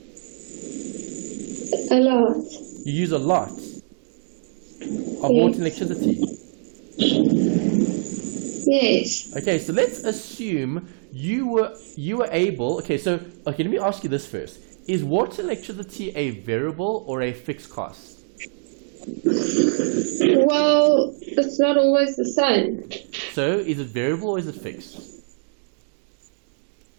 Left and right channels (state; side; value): silent; left; digital silence